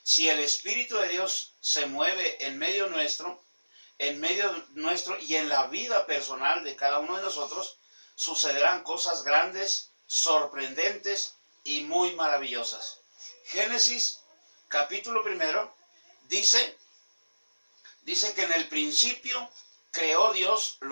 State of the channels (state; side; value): inverted; both; correlation -1.00